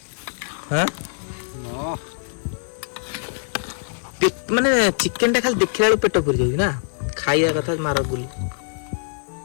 ହଁ ମାନେ ଚିକେନଟା ଖାଲି ଦେଖିଲା ବେଳକୁ ପେଟ ପୁରି ଯାଉଛି ନା, ଖାଇବା କଥା ମାର ଗୁଲି।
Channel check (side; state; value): right; silent; digital silence